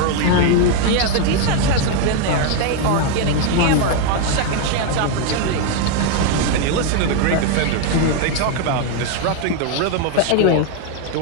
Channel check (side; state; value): both; different; correlation 0.01